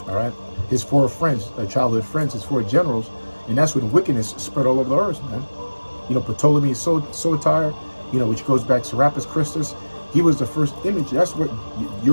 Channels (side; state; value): both; inverted; correlation -1.00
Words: All right. His 4 friends, childhood friends, his 4 generals, and that's when wickedness spread all over the earth, man. You know, Ptolemy Soter, you know, which goes back to Serapis Christus. He was the first image. That's what